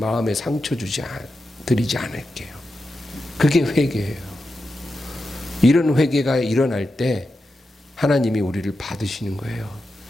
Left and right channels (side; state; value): both; normal; correlation 0.89